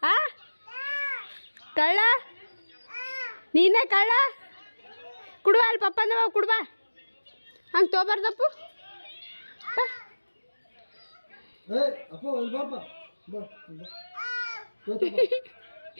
ಕಳ್ಳ, ನೀನೇ ಕಳ್ಳ. ಕುಡುವ ಅಲ್ಲಿ ಪಪ್ಪ ಅಂದವ, ಕುಡುವ ಹಂಗೆ ತೊಗೊಬಾರ್ದಪ್ಪು.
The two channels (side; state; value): both; inverted; correlation -1.00